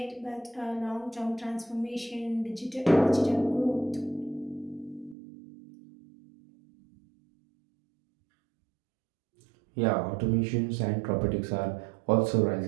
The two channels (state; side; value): drops out; left; at 5.2 s